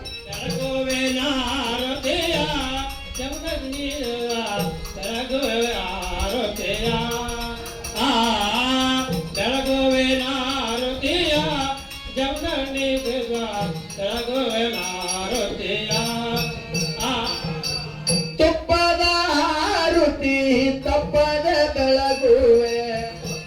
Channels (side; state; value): both; identical; correlation 1.00